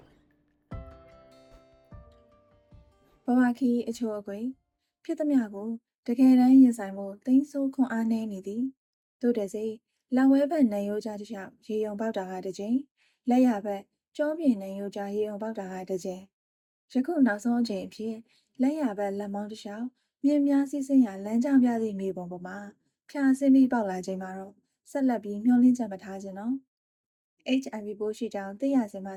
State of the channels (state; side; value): identical; both; correlation 1.00